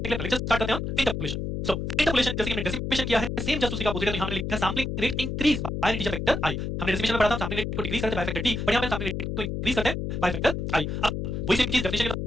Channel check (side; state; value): left; noise; hum, 3 dB below the sound